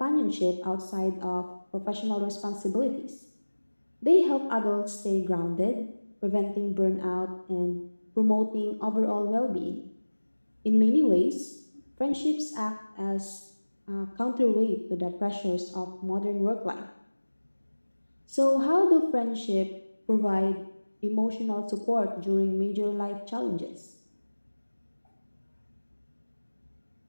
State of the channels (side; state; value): both; inverted; correlation -1.00